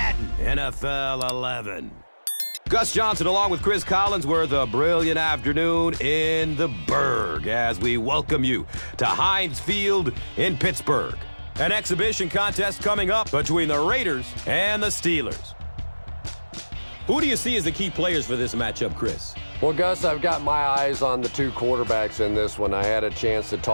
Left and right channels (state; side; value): inverted; both; correlation -1.00